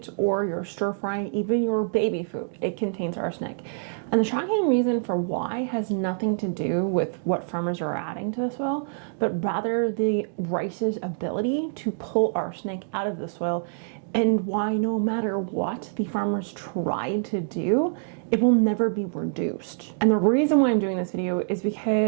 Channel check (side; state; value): left; silent; digital silence